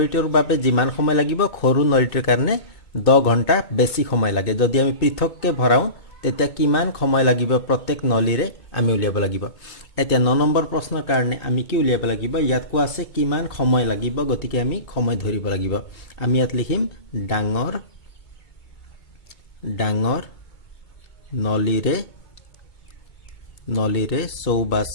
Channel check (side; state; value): right; late; 2.2 ms